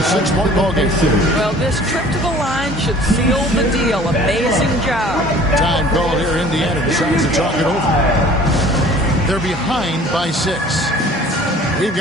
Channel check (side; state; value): both; normal; correlation 0.49